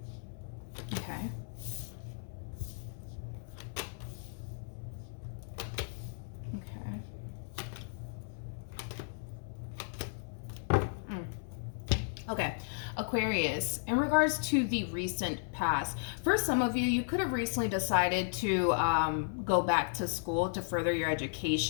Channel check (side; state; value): right; silent; 55 dB below the other